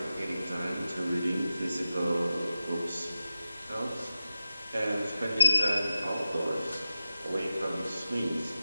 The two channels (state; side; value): inverted; both; correlation -0.93